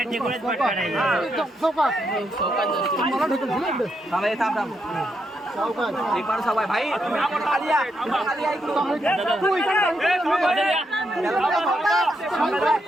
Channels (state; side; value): normal; both; correlation 0.80